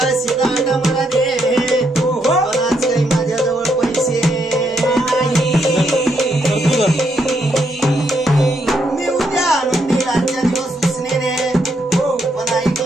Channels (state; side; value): normal; both; correlation 0.77